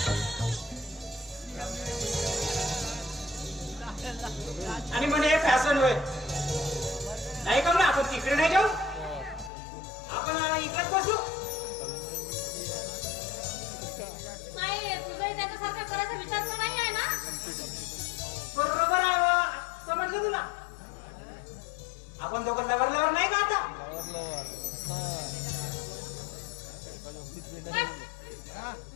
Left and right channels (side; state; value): right; drops out; at 9.5 s